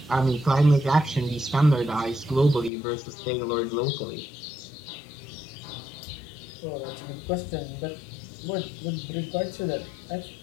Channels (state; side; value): drops out; right; at 2.7 s